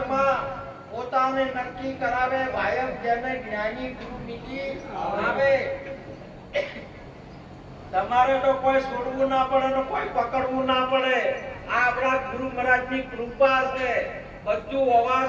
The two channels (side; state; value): both; identical; correlation 1.00